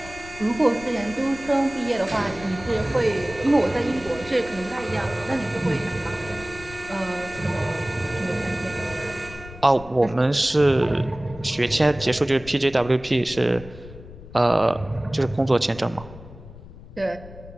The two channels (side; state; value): left; noise; rumble, 16 dB below the sound